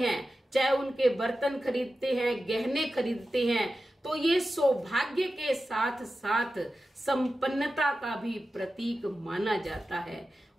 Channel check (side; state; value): both; normal; correlation 0.93